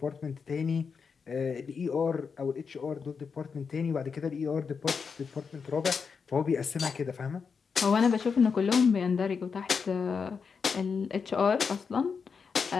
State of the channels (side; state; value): right; quieter; 5.7 dB